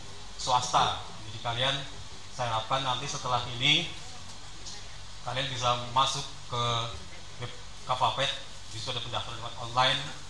swasta. Jadi kalian, saya harapkan nanti setelah ini kalian bisa masuk ke web Kavapet, di situ ada pendaftaran lewat online.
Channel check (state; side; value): identical; both; correlation 1.00